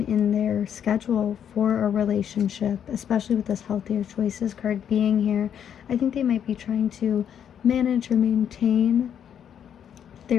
in their schedule for a relationship, especially with this healthier choices card being here. I think they might be trying to manage or maintain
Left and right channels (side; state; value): right; quieter; 8.8 dB